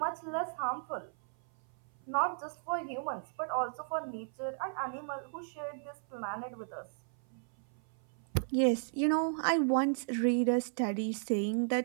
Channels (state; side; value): silent; left; 55 dB below the other